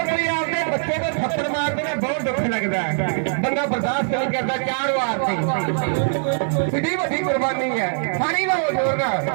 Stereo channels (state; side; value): silent; left; digital silence